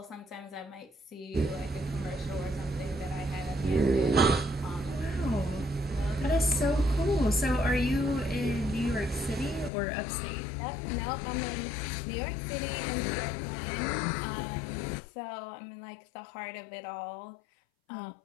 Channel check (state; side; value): drops out; right; at 9.7 s